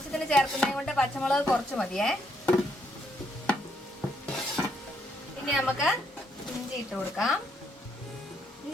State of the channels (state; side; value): normal; both; correlation 0.74